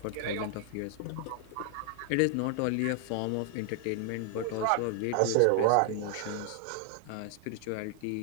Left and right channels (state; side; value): different; both; correlation 0.00